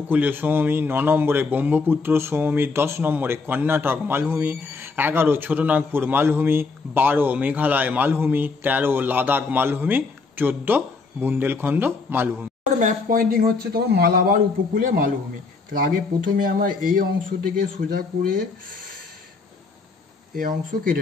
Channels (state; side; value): quieter; right; 4.2 dB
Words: সমভূমি, ৯ নম্বরে ব্রহ্মপুত্র সমভূমি, ১০ নম্বরে কর্ণাটক মালভূমি, ১১ ছোটনাগপুর মালভূমি, ১২ মেঘালয় মালভূমি, ১৩ লাদাখ মালভূমি, ১৪ বুন্দেলখণ্ড মালভূমি। ম্যাপ পয়েন্টিং হচ্ছে তোমার মালাবার উপকূলে মালভূমি। তাহলে আগে প্রথমে আমরা এই অংশ থেকে সোজা করে এই অংশ